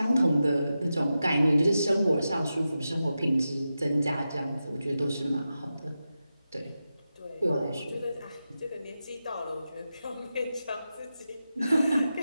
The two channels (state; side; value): inverted; both; correlation -0.91